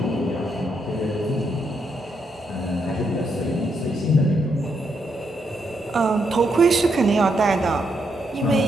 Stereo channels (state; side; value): normal; both; correlation 0.79